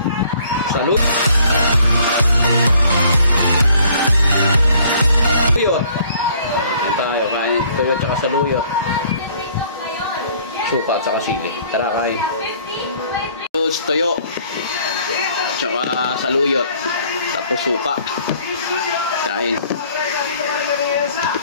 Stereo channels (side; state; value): both; inverted; correlation -0.59